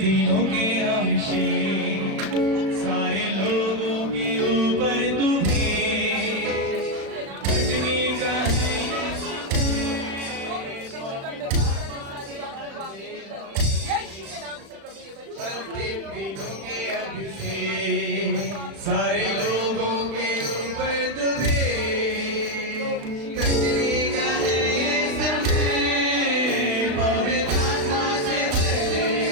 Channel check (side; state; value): left; late; 36 ms